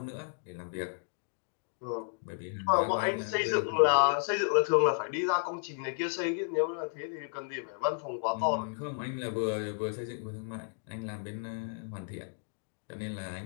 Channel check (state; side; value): silent; right; digital silence